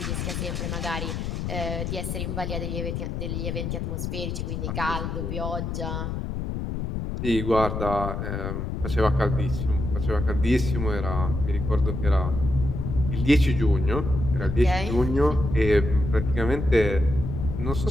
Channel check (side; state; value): left; noise; rumble, 3 dB below the sound